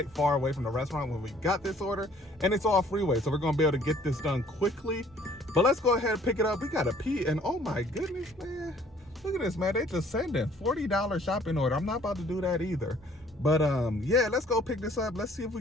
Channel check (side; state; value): both; normal; correlation 0.58